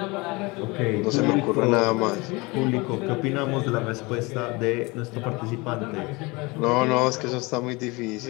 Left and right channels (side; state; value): right; quieter; 25.1 dB